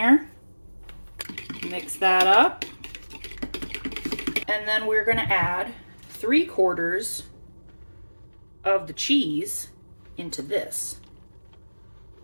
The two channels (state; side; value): inverted; both; correlation -1.00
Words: Mix that up. And then we're gonna add 3/4 of the cheese into this.